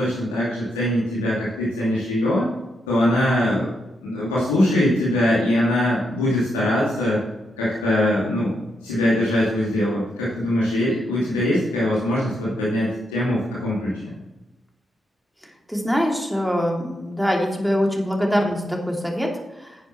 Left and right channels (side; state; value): both; normal; correlation 0.81